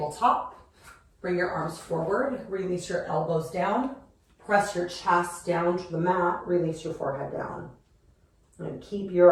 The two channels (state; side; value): identical; both; correlation 1.00